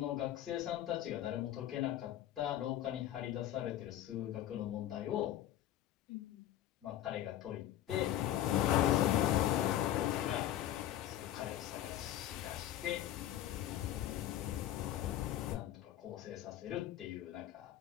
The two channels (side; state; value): right; quieter; 12.5 dB